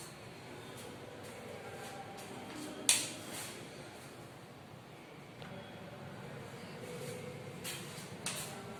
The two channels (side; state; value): both; identical; correlation 1.00